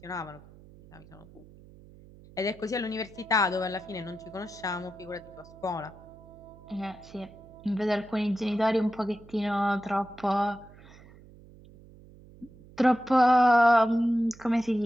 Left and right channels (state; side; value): noise; right; hum, 22 dB below the sound